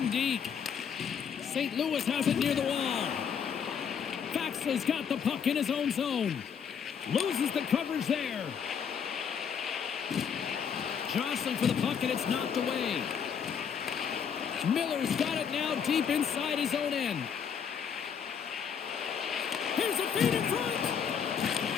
deep. St. Louis has it near the wall. Faxa's got the puck in his own zone. Loses the coverage there. Jostling for the puck, and it's knocked away. Miller's got it now deep inside his own end. Here's a feed in front.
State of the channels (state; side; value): quieter; right; 7.3 dB